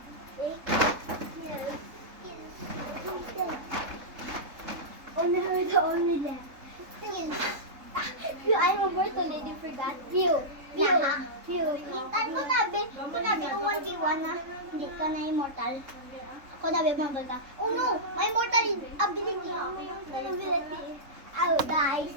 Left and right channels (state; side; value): late; left; 3.7 ms